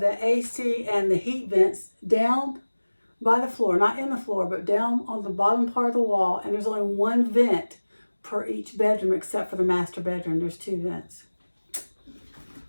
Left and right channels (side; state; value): both; inverted; correlation -1.00